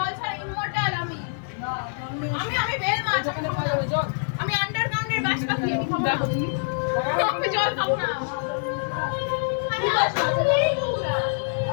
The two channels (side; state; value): right; silent; 61 dB below the other